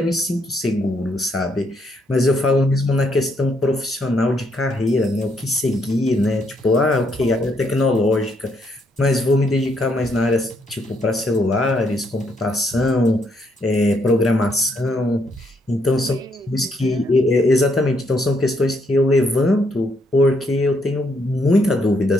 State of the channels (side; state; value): both; normal; correlation 0.73